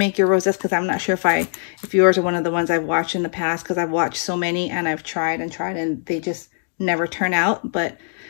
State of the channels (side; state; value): right; silent; digital silence